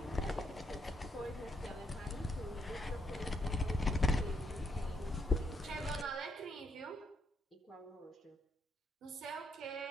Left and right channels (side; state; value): both; normal; correlation 0.76